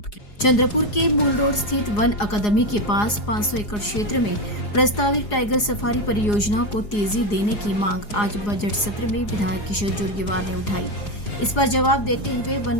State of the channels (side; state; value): right; late; 4.8 ms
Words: की। चंद्रपुर के मूल रोड स्थित वन अकादमी के पास 500 एकड़ क्षेत्र में प्रस्तावित टाइगर सफारी परियोजना को तेजी देने की मांग आज बजट सत्र में विधायक किशोर जोरगेवार ने उठाई। इस पर जवाब देते हुए